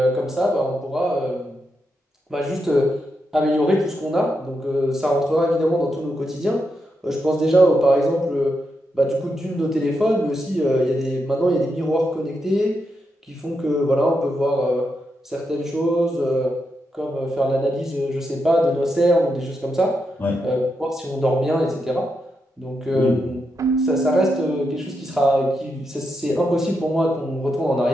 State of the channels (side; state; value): both; normal; correlation 0.84